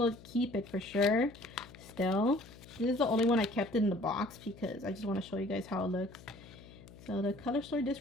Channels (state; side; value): noise; left; hum, 19 dB below the sound